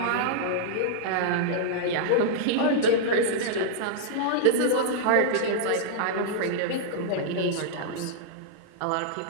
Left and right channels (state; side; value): different; both; correlation -0.02